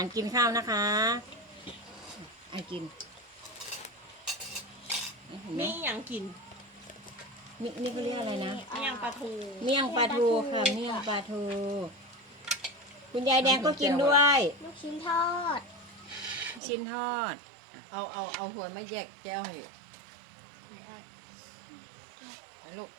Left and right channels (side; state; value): left; drops out; at 16.6 s